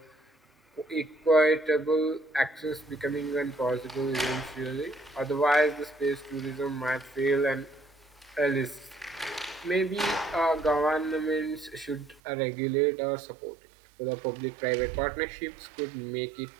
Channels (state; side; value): drops out; left; at 12.2 s